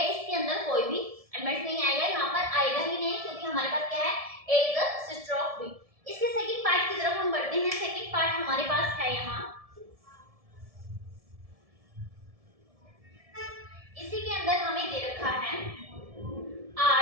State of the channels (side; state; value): left; late; 1.7 ms